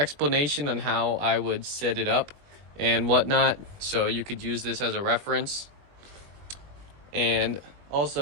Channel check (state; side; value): late; left; 21 ms